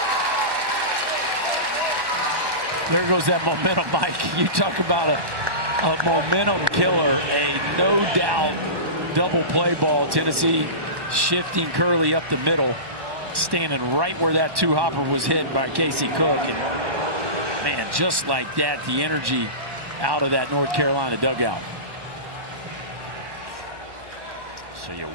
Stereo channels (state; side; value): late; left; 1.1 ms